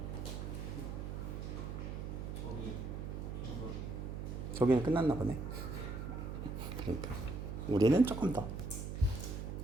저기는 끝났나 보네. 그러니까 우리는 조금 더.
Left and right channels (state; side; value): noise; right; hum, 5 dB below the sound